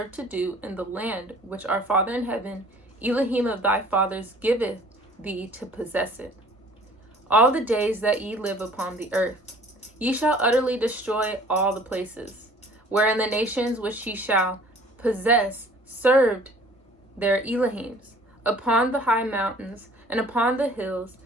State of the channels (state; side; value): normal; both; correlation 0.52